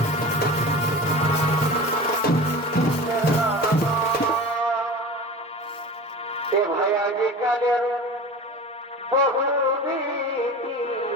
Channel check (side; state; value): both; normal; correlation 0.34